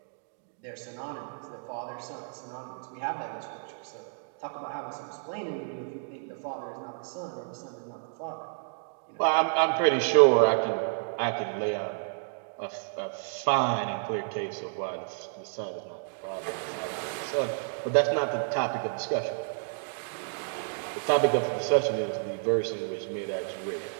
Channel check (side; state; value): left; silent; digital silence